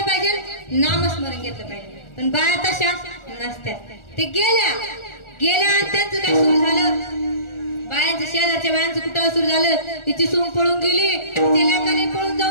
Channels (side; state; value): right; late; 1.4 ms